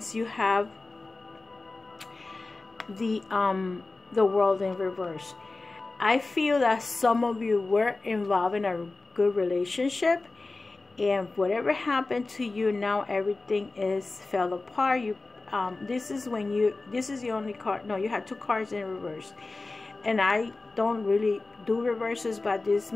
you have the World in reverse. I feel that some of you were involved in a good relationship, and whatever happened to you, now everything is fell apart. This is the only card. No, you had two cards in reverse, and I don't really do reverses, but this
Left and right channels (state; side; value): quieter; right; 3.4 dB